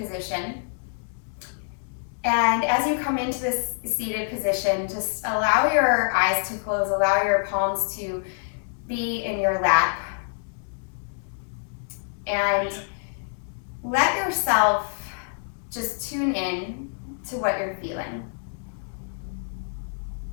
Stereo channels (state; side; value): silent; right; digital silence